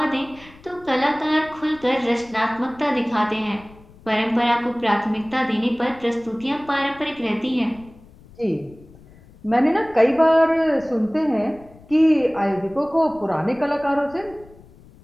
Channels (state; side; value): noise; left; rumble, 24 dB below the sound